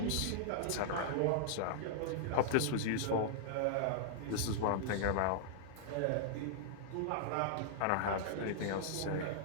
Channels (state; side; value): different; both; correlation -0.01